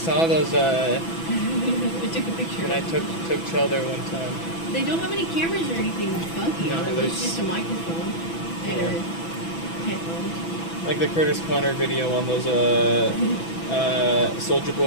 those I took a picture. when I took Chell there one time. They don't have any cameras or anything funky No, on them. It's there's- just a microphone and a headphones. Like the Curtis Connor video on those Soulja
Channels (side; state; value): right; late; 6.0 ms